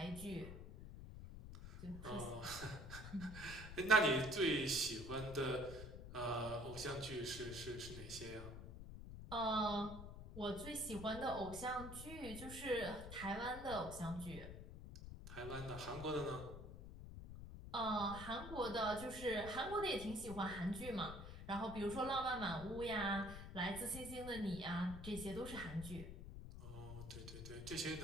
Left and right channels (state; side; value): noise; left; rumble, 10 dB below the sound